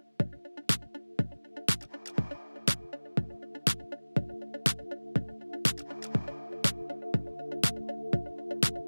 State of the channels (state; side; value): inverted; both; correlation -1.00